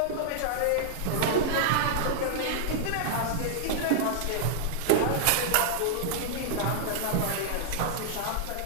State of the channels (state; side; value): different; both; correlation -0.01